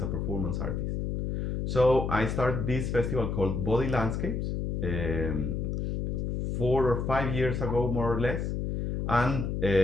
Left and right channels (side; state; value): left; noise; hum, 2 dB below the sound